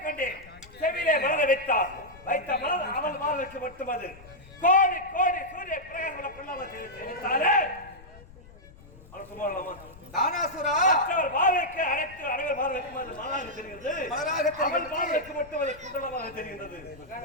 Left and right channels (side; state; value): left; noise; rumble, 21 dB below the sound